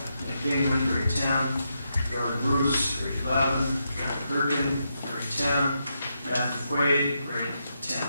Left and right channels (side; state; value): both; inverted; correlation -0.83